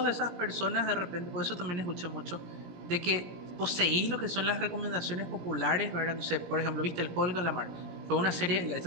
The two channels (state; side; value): late; left; 17 ms